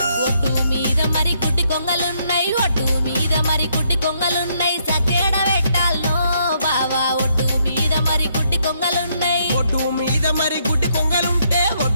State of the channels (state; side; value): inverted; both; correlation -0.73